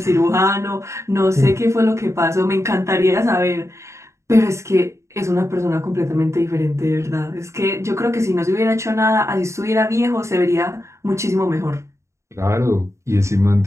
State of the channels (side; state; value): left; late; 0.14 ms